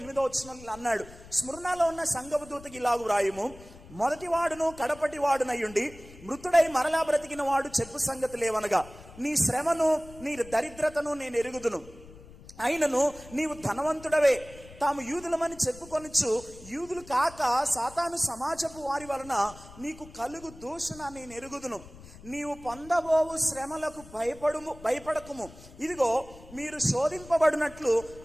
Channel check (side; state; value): left; noise; rumble, 19 dB below the sound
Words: 8వ వచనంలో అన్నాడు, స్మరణలో ఉన్న సంఘపు దూతకి ఇలాగు వ్రాయుము, మొదటివాడును కడపటివాడునయ్యుండి మృతుడై మరలా బ్రతికిన వాడు చెప్పు సంగతి లేవనగా, నీ శ్రమను నీ దరిద్రతను నేను ఎరుగుదును. అయినను నీవు ధనవంతుడవే, తాము యూదులమని చెప్పుకొనొచ్చు యూదులు కాక సాతాను సమాజపు వారి వలన నీకు కలుగు దూషణ నేను ఎరుగుదును. నీవు పొందబోవు శ్రమలకు భయపడకుము. ఇదిగో మీరు శోధింపబడినట్లు